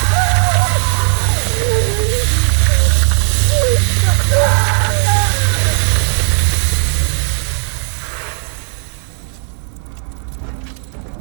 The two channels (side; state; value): left; silent; digital silence